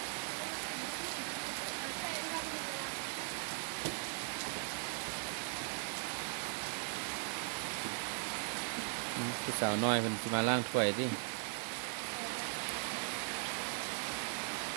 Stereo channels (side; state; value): left; silent; 52 dB below the other